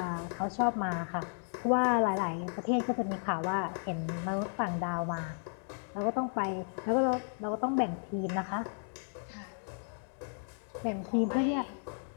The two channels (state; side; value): silent; right; 55 dB below the other